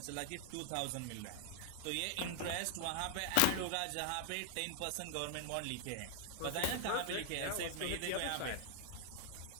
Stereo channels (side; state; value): both; different; correlation 0.00